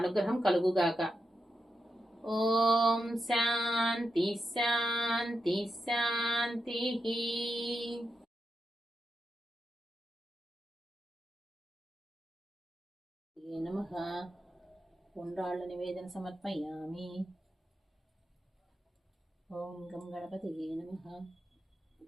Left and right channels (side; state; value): both; normal; correlation 0.87